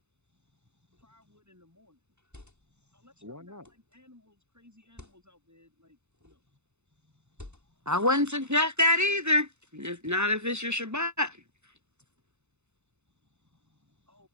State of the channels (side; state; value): left; late; 0.82 ms